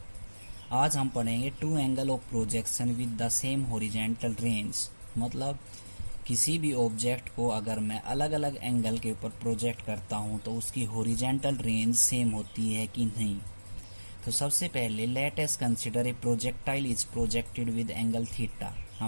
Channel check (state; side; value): inverted; both; correlation -1.00